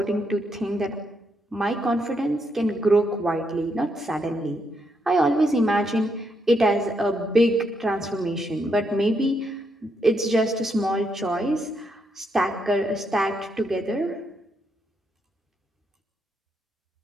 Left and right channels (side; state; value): both; normal; correlation 0.78